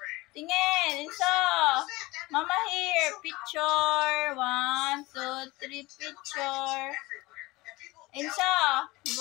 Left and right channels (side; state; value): right; quieter; 21.2 dB